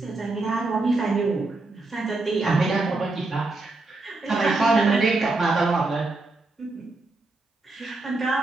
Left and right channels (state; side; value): quieter; left; 3.2 dB